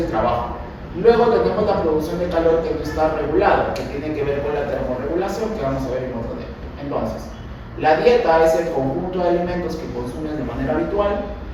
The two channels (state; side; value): identical; both; correlation 1.00